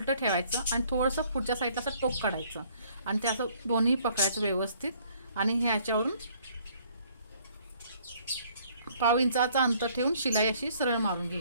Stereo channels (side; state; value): both; inverted; correlation -0.61